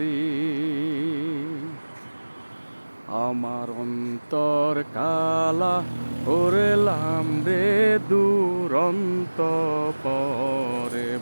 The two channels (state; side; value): inverted; both; correlation -1.00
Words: আমার অন্তর কালা করেলাম রে দুরন্ত পরে